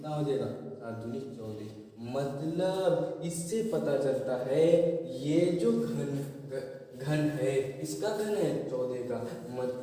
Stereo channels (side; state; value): both; identical; correlation 1.00